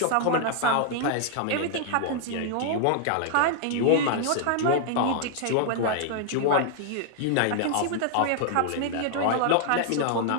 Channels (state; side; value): different; both; correlation -0.01